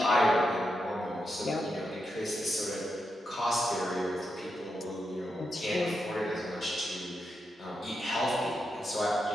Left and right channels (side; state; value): both; normal; correlation 0.86